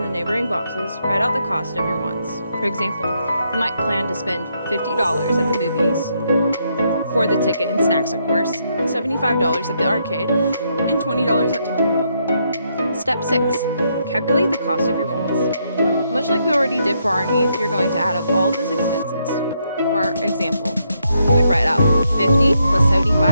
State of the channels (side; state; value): both; inverted; correlation -0.77